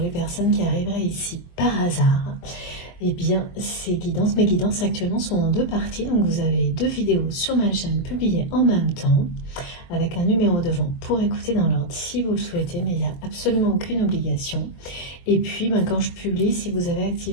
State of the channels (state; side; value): late; right; 23 ms